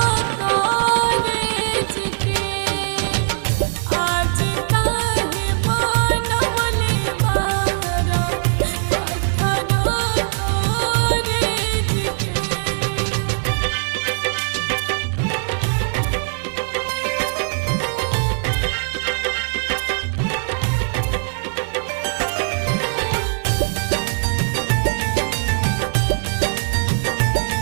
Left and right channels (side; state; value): left; silent; digital silence